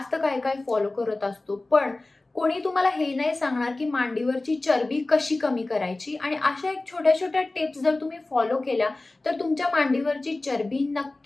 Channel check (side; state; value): right; quieter; 3.0 dB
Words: काय फॉलो करत असतो, पण कोणी तुम्हाला हे नाही सांगणार की मांडीवरची चरबी कशी कमी करायची. आणि अशा एक छोट्या छोट्या टिप्स जर तुम्ही फॉलो केल्या तर तुमच्या मांडीवरची चरबी